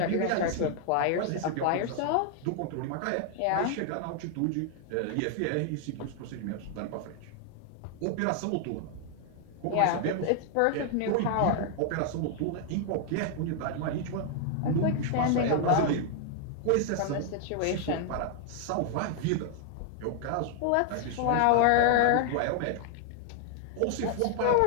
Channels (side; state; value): both; different; correlation 0.00